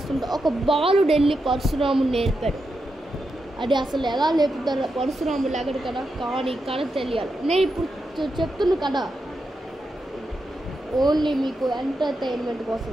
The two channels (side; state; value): both; normal; correlation 0.86